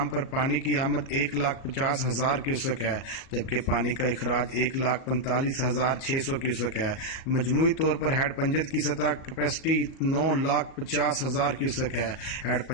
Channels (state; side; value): late; right; 37 ms